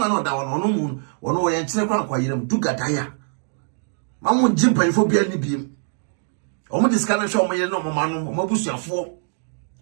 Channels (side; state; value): left; silent; digital silence